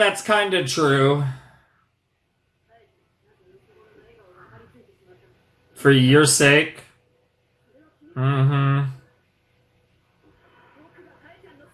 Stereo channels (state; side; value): identical; both; correlation 1.00